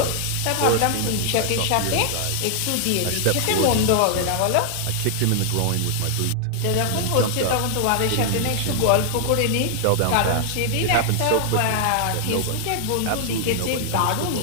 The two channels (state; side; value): different; both; correlation 0.00